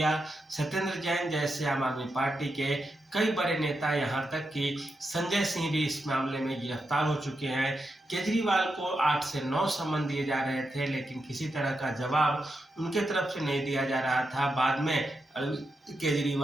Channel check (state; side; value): normal; both; correlation 0.86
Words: सत्येंद्र जैन जैसे आम आदमी पार्टी के कई बड़े नेता, यहां तक कि संजय सिंह भी इस मामले में गिरफ्तार हो चुके हैं। केजरीवाल को 8 से 9 समन दिए जा रहे थे, लेकिन किसी तरह का जवाब उनके तरफ से नहीं दिया जा रहा था। बाद में अरविंद